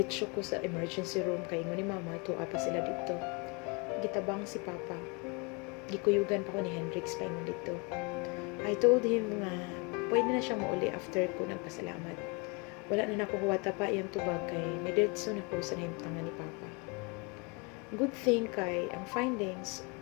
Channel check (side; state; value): right; quieter; 29.7 dB